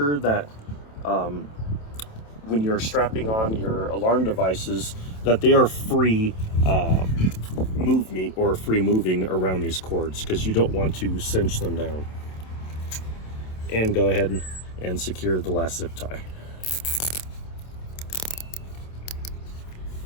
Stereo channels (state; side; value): late; right; 27 ms